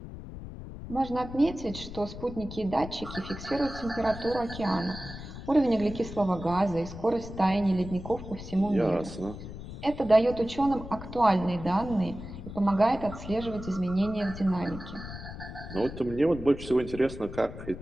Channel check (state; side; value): noise; left; rumble, 11 dB below the sound